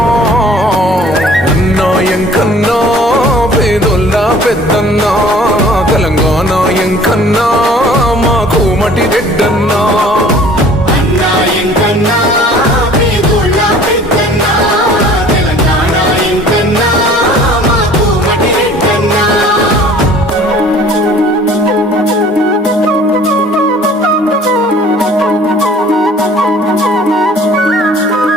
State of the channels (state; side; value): normal; both; correlation 0.51